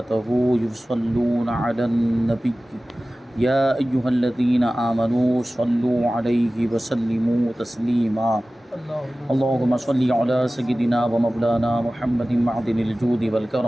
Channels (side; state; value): both; normal; correlation 0.97